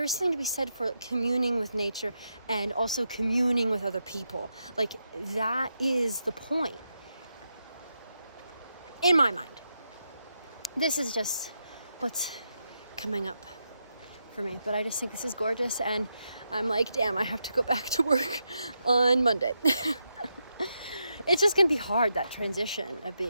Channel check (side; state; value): both; inverted; correlation -0.84